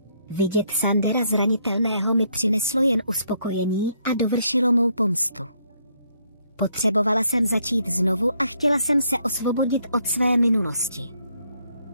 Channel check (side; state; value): both; inverted; correlation -0.72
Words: Vidět Sandera zranitelného mi přineslo jen uspokojení a dovršilo mou pomstu. Potřebovala jsem začít znovu a chtěla jsem se osvobodit od své minulosti.